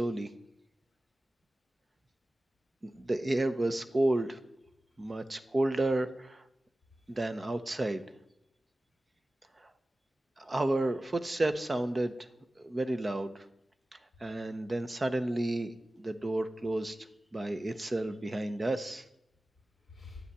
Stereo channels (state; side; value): normal; both; correlation 0.96